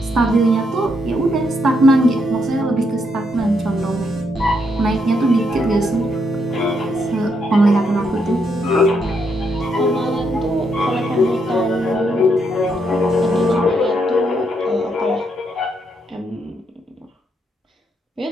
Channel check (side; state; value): both; normal; correlation 0.77